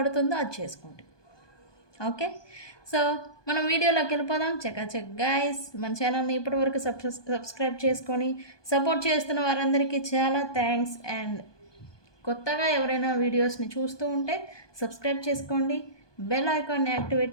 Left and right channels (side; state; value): right; late; 1.2 ms